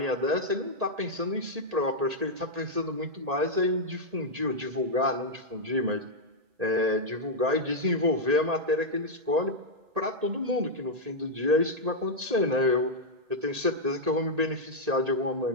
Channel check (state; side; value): late; left; 1.8 ms